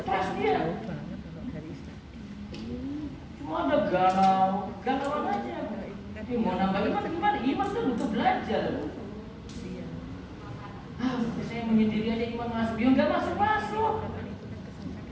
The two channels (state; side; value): identical; both; correlation 1.00